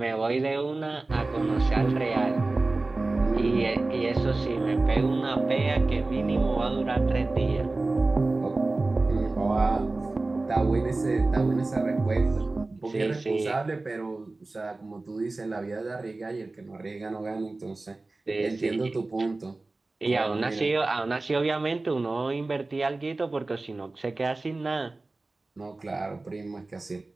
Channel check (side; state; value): left; quieter; 3.2 dB